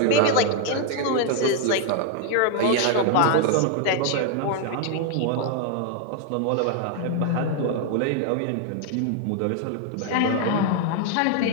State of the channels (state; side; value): different; both; correlation 0.00